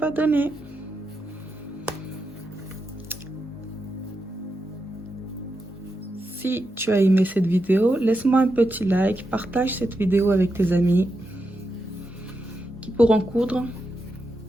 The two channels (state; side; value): normal; both; correlation 0.86